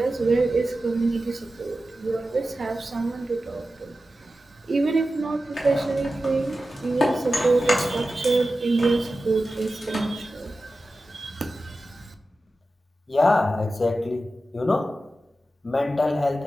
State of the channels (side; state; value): both; normal; correlation 0.93